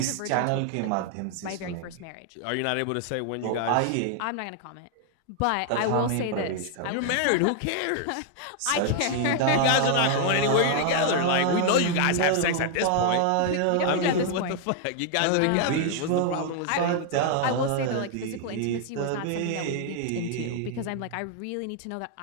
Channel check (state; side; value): different; both; correlation 0.00